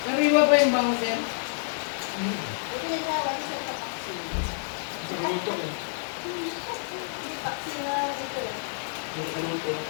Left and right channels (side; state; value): right; silent; digital silence